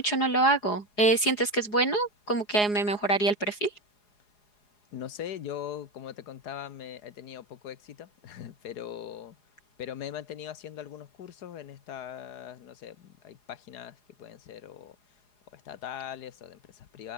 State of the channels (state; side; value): late; right; 4.8 ms